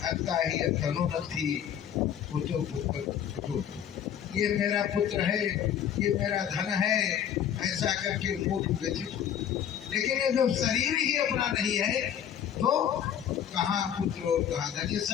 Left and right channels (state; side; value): quieter; right; 9.3 dB